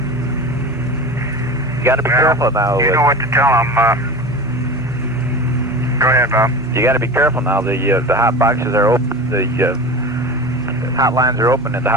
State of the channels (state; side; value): normal; both; correlation 0.31